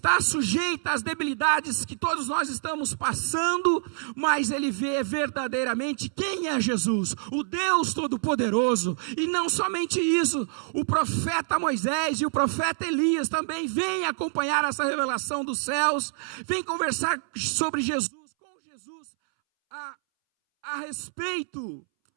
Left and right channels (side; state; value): left; silent; 60 dB below the other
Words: sujeita às debilidades que todos nós estamos passando, mas ele vê verdadeiramente quem é Jesus, o Deus Todo-Poderoso. E não somente isso, o profeta Moisés e o profeta Elias também vêm acompanhar essa revelação dos céus, vêm conversar sobre Jesus, com Jesus, a respeito